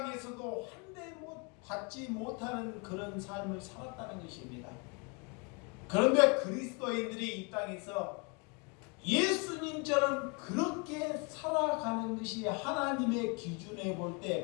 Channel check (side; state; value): right; quieter; 32.0 dB